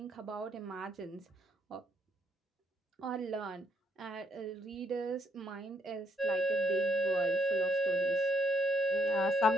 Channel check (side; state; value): both; normal; correlation 0.73